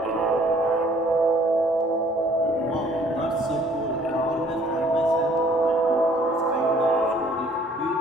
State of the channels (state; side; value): normal; both; correlation 0.58